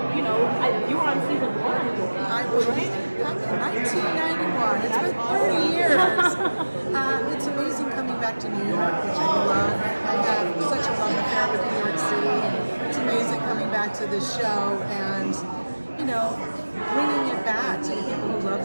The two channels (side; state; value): both; inverted; correlation -1.00